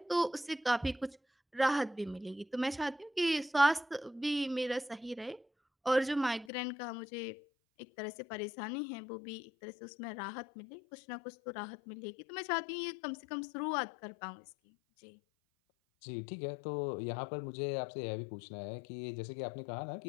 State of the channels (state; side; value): drops out; right; at 6.5 s